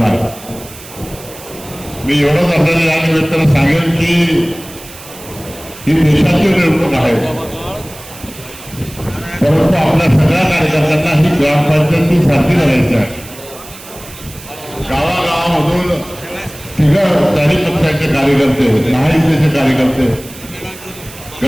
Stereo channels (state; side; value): noise; right; hiss, 17 dB below the sound